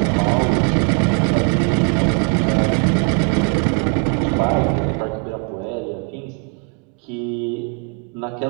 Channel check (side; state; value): left; quieter; 34.6 dB